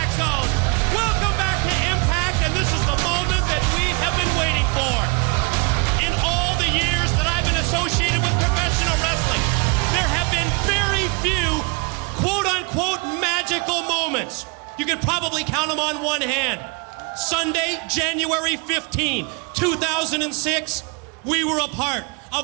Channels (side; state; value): left; quieter; 31.6 dB